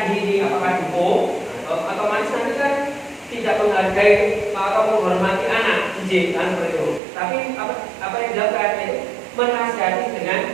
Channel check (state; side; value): drops out; left; at 7.0 s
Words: ini, apakah dukung atau manis nanti kan tidak menghargai atau menghormati anak izin kan seperti itu. Tapi apa yang dilakukan itu menasihati dengan